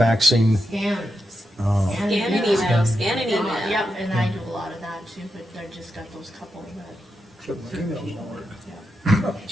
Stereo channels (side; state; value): both; normal; correlation 0.87